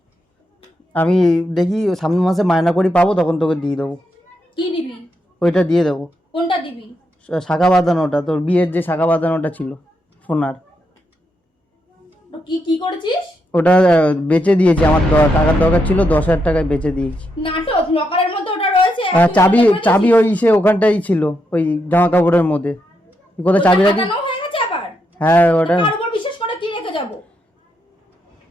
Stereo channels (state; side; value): normal; both; correlation 0.81